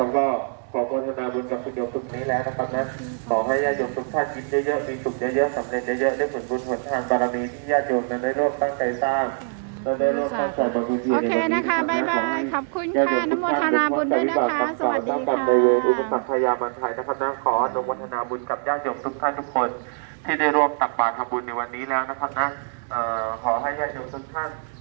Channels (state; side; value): silent; left; 63 dB below the other